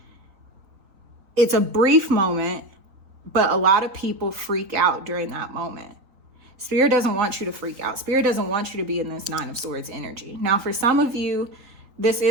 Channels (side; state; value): left; late; 3.9 ms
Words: It's a brief moment, but a lot of people freak out during that moment. Spirit doesn't want you to freak out. Spirit doesn't want you to be in this 9 of Swords energy. Now, for some of you, this